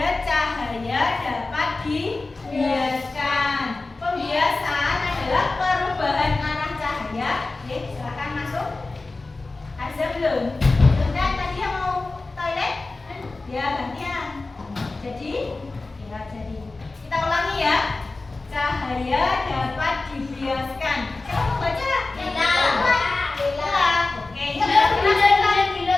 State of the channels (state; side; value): quieter; right; 3.4 dB